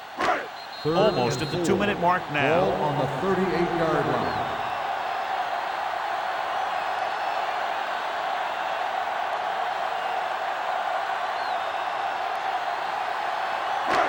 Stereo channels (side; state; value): both; identical; correlation 1.00